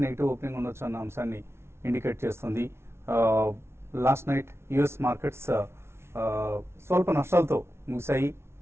negative opening ఉండొచ్చు అన్న అంశాన్ని ఇండికేట్ చేస్తుంది. లాస్ట్ నైట్ యుఎస్ మార్కెట్స్ స్వల్ప నష్టాలతో ముగిశాయి.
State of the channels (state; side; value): late; left; 0.12 ms